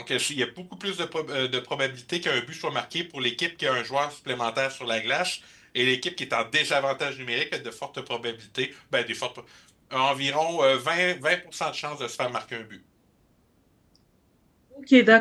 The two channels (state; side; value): identical; both; correlation 1.00